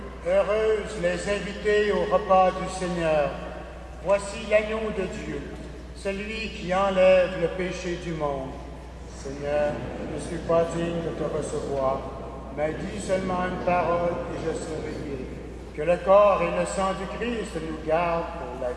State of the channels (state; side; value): identical; both; correlation 1.00